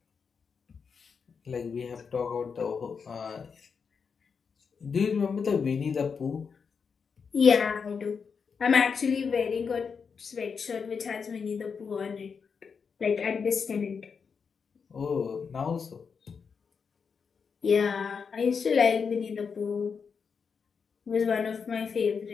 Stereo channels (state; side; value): quieter; right; 5.9 dB